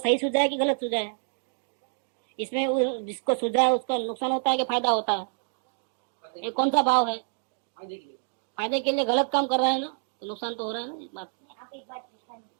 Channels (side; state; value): left; silent; digital silence